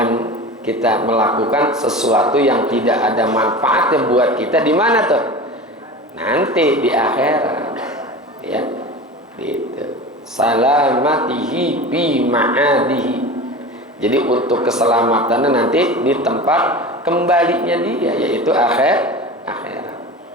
kita melakukan sesuatu yang tidak ada manfaatnya buat kita di mana tuh? Nanti di akhirat. Ya. Gitu. Salamatihi bi ma'adihi. Jadi untuk keselamatannya nanti di tempat kembalinya dia, yaitu akhirat.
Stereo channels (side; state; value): both; normal; correlation 0.32